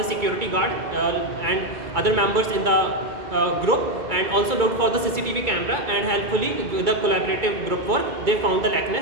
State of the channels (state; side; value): late; left; 2.2 ms